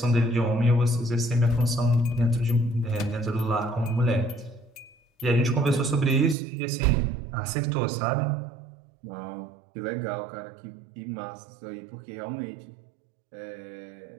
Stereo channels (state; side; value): drops out; left; at 6.4 s